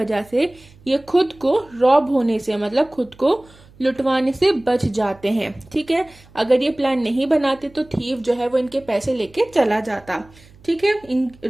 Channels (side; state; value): right; noise; hum, 26 dB below the sound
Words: से ये खुद को रॉब होने से मतलब खुद को लुटवाने से बच जाते हैं, ठीक है। अगर ये प्लान नहीं बनाते तो थीफ जो है वो इनके पैसे लेके चला जाता, ठीक है, इन